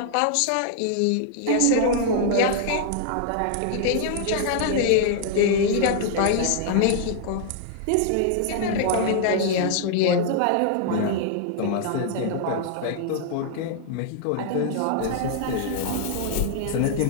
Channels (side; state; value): both; different; correlation -0.01